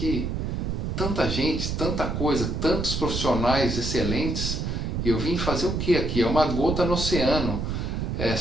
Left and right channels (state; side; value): noise; right; rumble, 2 dB below the sound